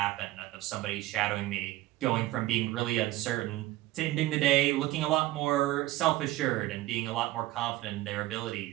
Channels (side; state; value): left; quieter; 16.9 dB